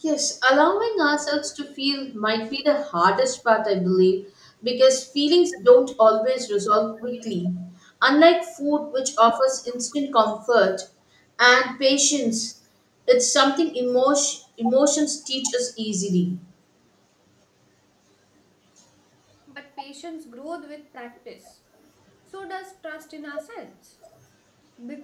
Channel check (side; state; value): both; identical; correlation 1.00